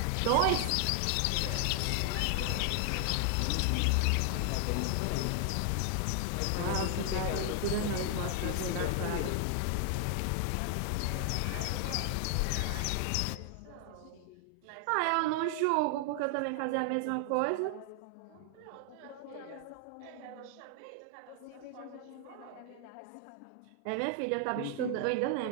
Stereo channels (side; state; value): both; different; correlation 0.00